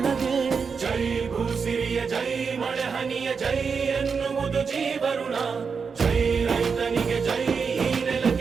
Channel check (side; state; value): left; quieter; 5.6 dB